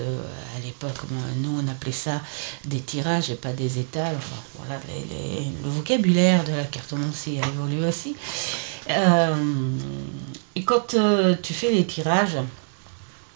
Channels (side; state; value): left; silent; digital silence